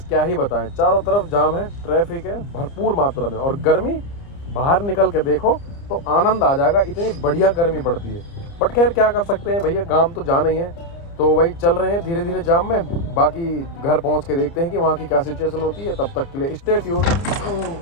क्या ही बताएं, चारों तरफ जाम है, ट्रैफिक है भरपूर मात्रा में, और गर्मी बाहर निकल के देखो तो आनंद आ जाएगा, इतनी बढ़िया गर्मी पड़ती है। बट खैर क्या कर सकते हैं भैया, गांव तो जाना ही है, तो वही चल रहे हैं धीरे धीरे जाम में। बाकी घर पहुँच के देखते हैं कि वहाँ की क्या सिचुएशन होती है, तब तक के लिए स्टे ट्यून।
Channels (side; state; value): right; late; 30 ms